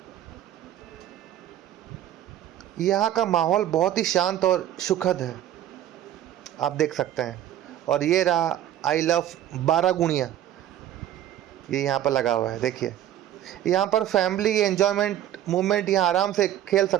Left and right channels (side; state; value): left; quieter; 11.9 dB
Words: यहाँ का माहौल बहुत ही शांत और सुखद है, आप देख सकते हैं। और ये रहा आई लव बारागुणिया, ये यहाँ पर लगा हुआ है। देखिए यहाँ पर फैमिली एंजॉयमेंट मूवमेंट यहाँ आराम से खेल